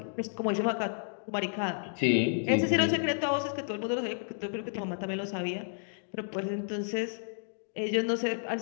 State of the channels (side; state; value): right; silent; digital silence